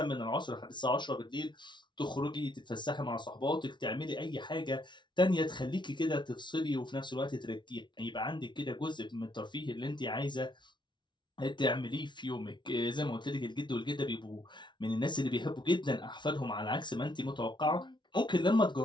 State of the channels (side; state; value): right; late; 0.23 ms